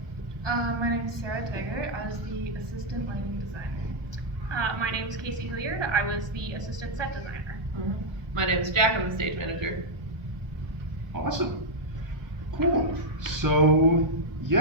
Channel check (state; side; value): late; left; 1.1 ms